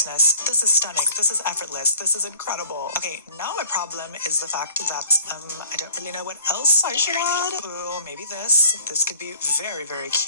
This is stunning. This is effortless. This is incredible. Okay, now my problem is the fact that, I don't really know what else I should add. Ooh, maybe this. This could be very, very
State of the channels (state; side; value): inverted; both; correlation -0.52